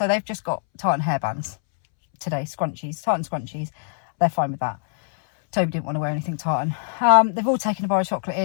they've just got tartan hairbands today, scrunchies, tartan scrunchies. They're fine with that. Toby didn't want to wear anything tartan. They've all taken a bar of chocolate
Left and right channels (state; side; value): silent; right; 63 dB below the other